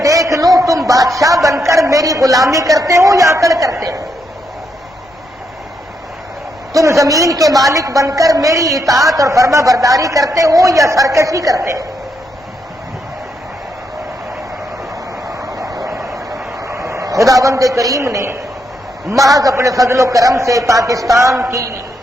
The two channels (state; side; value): normal; both; correlation 0.79